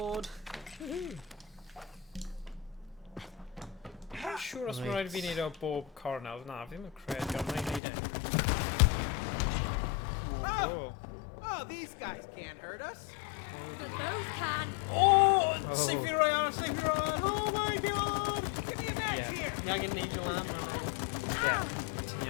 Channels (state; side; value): drops out; right; at 7.8 s